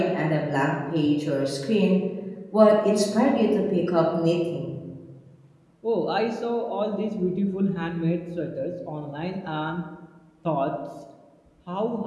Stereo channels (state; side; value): identical; both; correlation 1.00